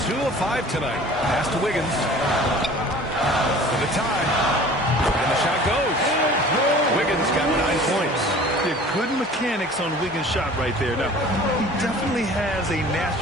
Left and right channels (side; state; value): both; normal; correlation 0.45